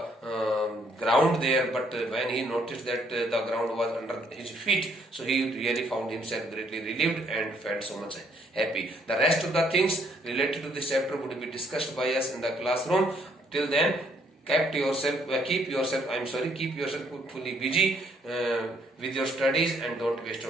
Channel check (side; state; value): both; normal; correlation 0.67